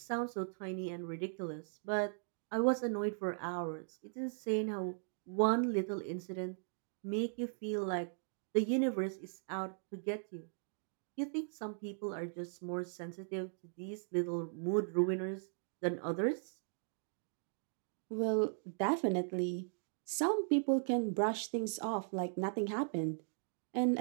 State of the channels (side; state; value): left; silent; digital silence